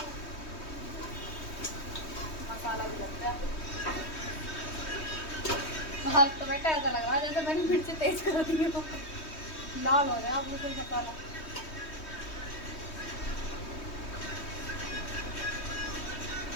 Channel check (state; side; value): late; right; 3.2 ms